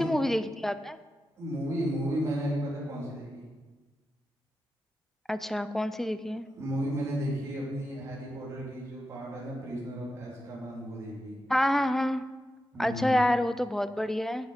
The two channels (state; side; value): normal; both; correlation 0.89